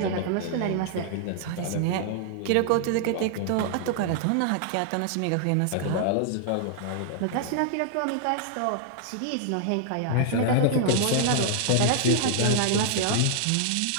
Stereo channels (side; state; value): both; different; correlation 0.00